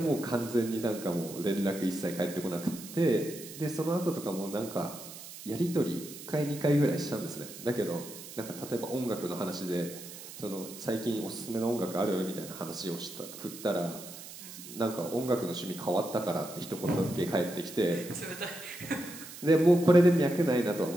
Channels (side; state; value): right; noise; hiss, 13 dB below the sound